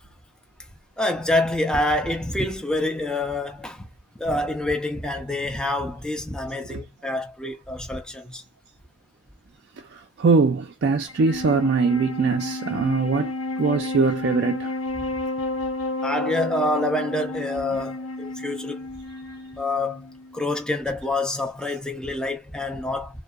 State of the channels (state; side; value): normal; both; correlation 0.50